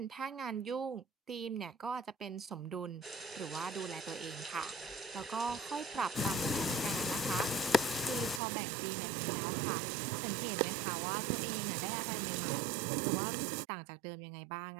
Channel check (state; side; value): drops out; left; at 8.4 s